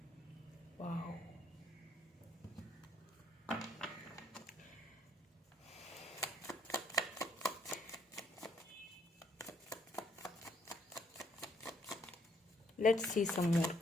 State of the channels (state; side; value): normal; both; correlation 0.68